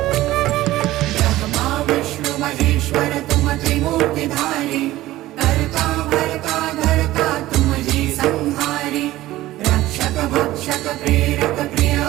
ब्रह्मा विष्णु महेश्वर तुम त्रिमूर्तिधारी करता भरता धरता तुम जी संहारी रक्षक भक्षक प्रेरक प्रिय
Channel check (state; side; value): quieter; left; 16.2 dB